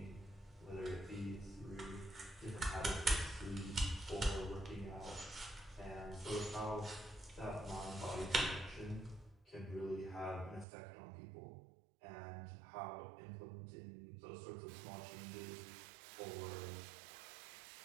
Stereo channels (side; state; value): left; drops out; at 10.7 s